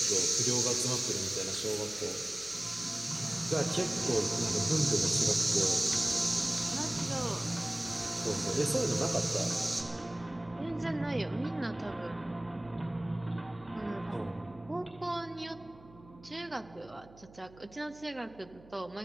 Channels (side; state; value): right; noise; hum, 22 dB below the sound